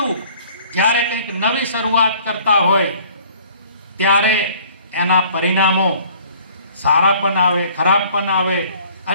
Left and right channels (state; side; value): inverted; both; correlation -0.53